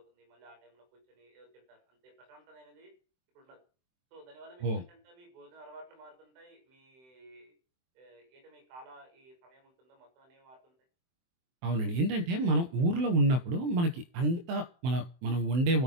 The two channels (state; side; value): late; left; 23 ms